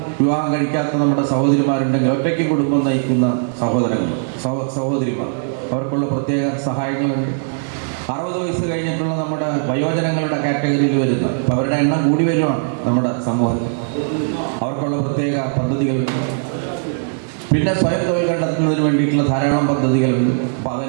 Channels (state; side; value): silent; left; digital silence